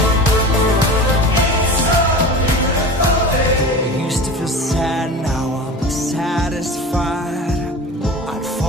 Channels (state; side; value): normal; both; correlation 0.34